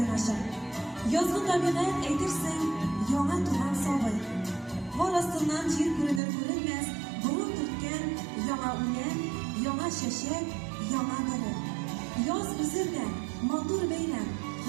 ача. Язгы табигать әйтерсең, яңа туган сабый. Кар астыннан җир күренер-күренмәс, бурын төрткән яңа үлән, яңа чәчәк, яңа нуры. Яз үзендә матур бәйрәм,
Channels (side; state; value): left; drops out; at 6.2 s